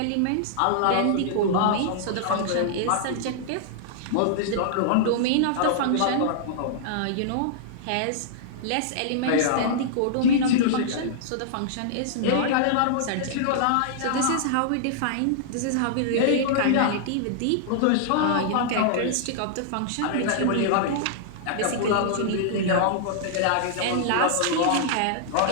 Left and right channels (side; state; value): both; different; correlation -0.01